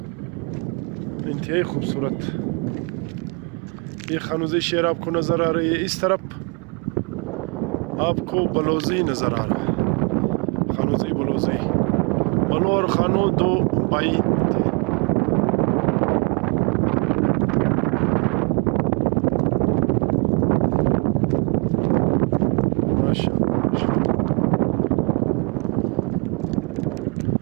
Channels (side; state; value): left; quieter; 32.6 dB